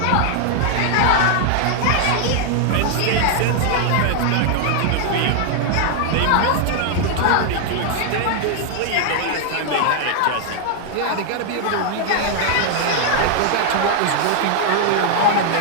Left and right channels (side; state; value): both; different; correlation 0.00